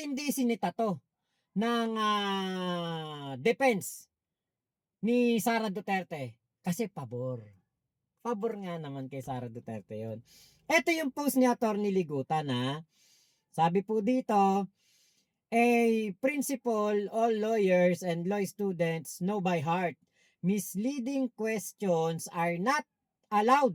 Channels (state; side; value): identical; both; correlation 1.00